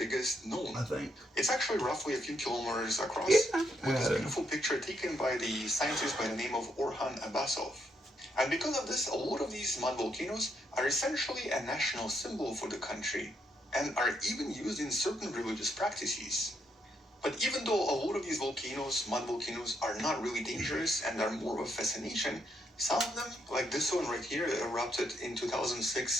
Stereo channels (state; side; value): normal; both; correlation 0.77